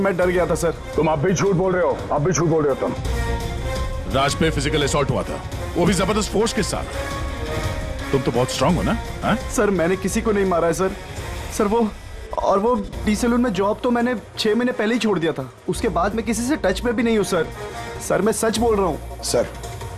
डर गया था सर। तुम अब भी झूठ बोल रहे हो, अब भी झूठ बोल रहे हो तुम। राज पे फिजिकल असॉल्ट हुआ था, वो भी जबरदस्त फोर्स के साथ। तुम तो बहुत स्ट्रांग हो ना? हा? सर मैंने किसी को नहीं मारा है सर। सर वो डी सैलून में जॉब तो मैंने 6 महीने पहले ही छोड़ दिया था, उसके बाद मैं किसी से टच में भी नहीं हूँ सर। सर मैं सच बोल रहा हूँ। सर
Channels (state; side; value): identical; both; correlation 1.00